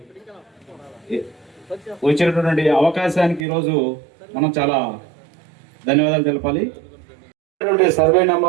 వచ్చినటువంటి అవకాశానికి ఈరోజు మనం చాలా ధన్యవాదాలు తెలపాలి. సర్వే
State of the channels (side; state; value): left; drops out; at 3.4 s